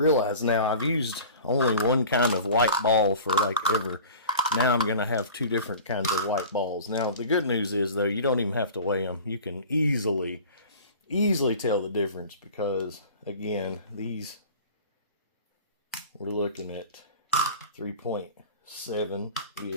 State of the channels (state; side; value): inverted; both; correlation -0.41